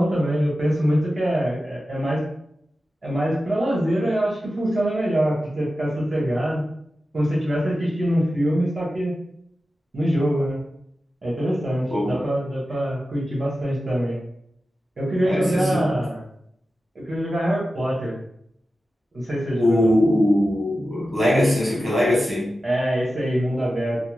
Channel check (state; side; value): normal; both; correlation 0.93